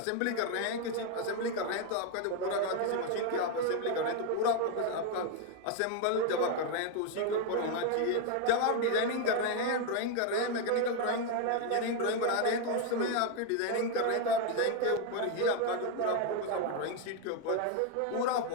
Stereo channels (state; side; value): different; both; correlation 0.01